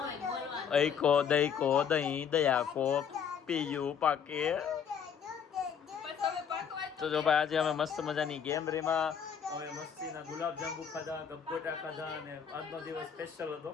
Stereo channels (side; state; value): right; quieter; 7.5 dB